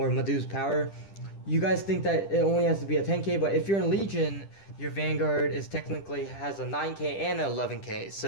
Madhu's power, you guys think that it only has to be a 10k, but if you're in Legion, your Vanguard has a 9k and an 11k,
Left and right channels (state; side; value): late; right; 10 ms